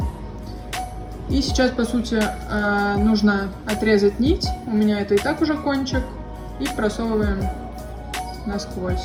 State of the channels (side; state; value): both; identical; correlation 1.00